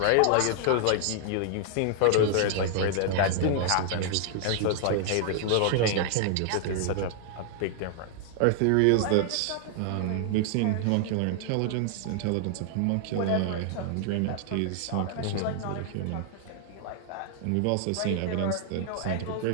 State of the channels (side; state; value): both; different; correlation -0.01